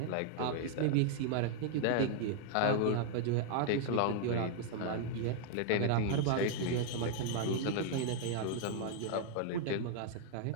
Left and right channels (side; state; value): both; different; correlation 0.00